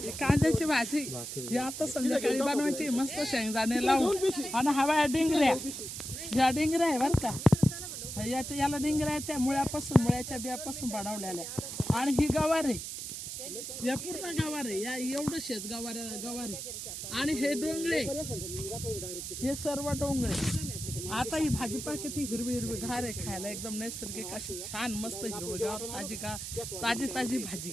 कांद्याची भाजी ही आता संध्याकाळी बनवायची मस्त शेंगदाणे लावून आणि हवा डिंगऱ्या ह्या डिंगऱ्या आहे बरं का याला डिंगऱ्या आहे त्या मुळ्याच्या बियापासून बनवलेल्या आणि ही गवार आहे या पूर्ण गवार आहे या एवढं शेत गवार आहे आणि हे डोंगळे हे सर्व डोंगळे आता ही भाजीपाला किती हिरवी हिरवी घार आहे खायला एकदम नैसर्गिक अशी छान मस्त हिरवगार ताजी भाजी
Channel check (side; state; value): right; noise; hiss, 7 dB below the sound